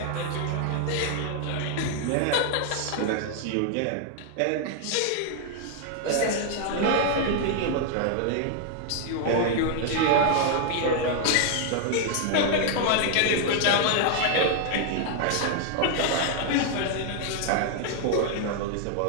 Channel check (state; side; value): different; both; correlation 0.00